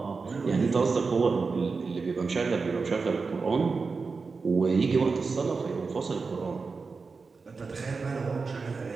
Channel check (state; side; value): quieter; left; 4.5 dB